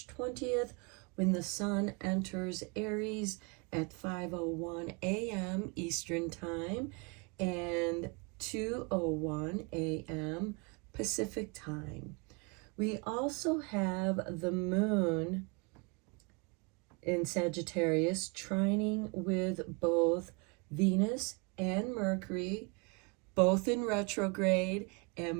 20th, when the sun enters Aries at 5:01 a.m. Eastern Time and 2:01 a.m. Pacific Time. We also have the moon in Sagittarius trining with both Venus and Mercury, both in retrograde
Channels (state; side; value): quieter; left; 31.0 dB